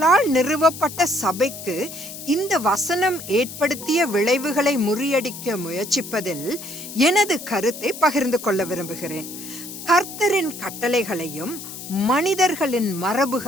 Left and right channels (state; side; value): noise; left; hiss, 11 dB below the sound